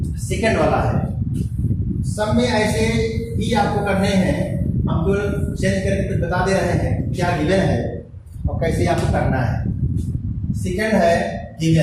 वाला है, सब में ऐसे ही आपको करने हैं। हम तो चेंज करके तो बता दे रहे हैं क्या गिवन है और कैसे आपको करना है। सेकंड है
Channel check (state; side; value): identical; both; correlation 1.00